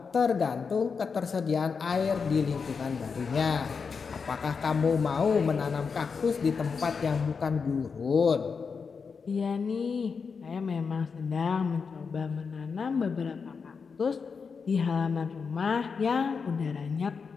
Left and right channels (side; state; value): right; quieter; 5.5 dB